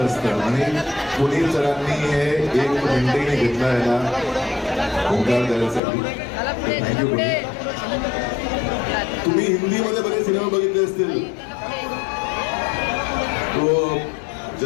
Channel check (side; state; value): right; drops out; at 5.8 s